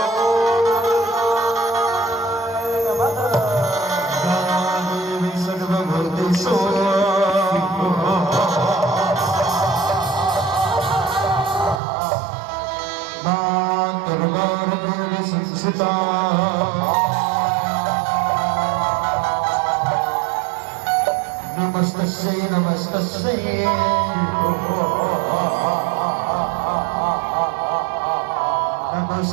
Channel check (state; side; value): drops out; left; at 11.8 s